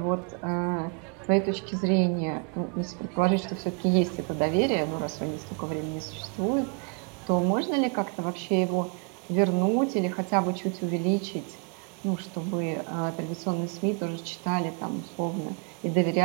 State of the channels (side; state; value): left; quieter; 39.5 dB